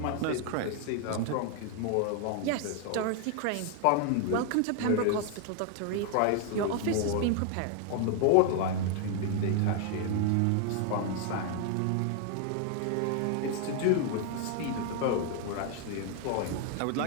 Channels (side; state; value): both; different; correlation 0.00